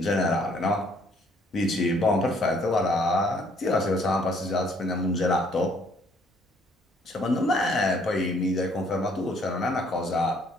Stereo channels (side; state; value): both; normal; correlation 0.64